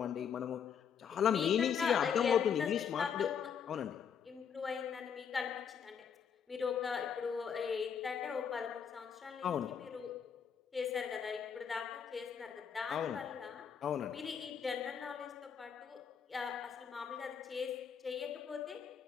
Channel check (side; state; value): right; quieter; 7.4 dB